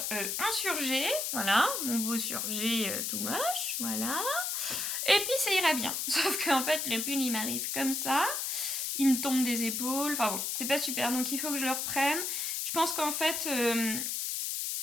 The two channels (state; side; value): noise; left; hiss, 1 dB below the sound